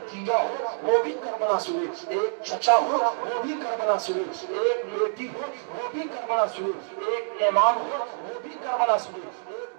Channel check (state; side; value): silent; left; digital silence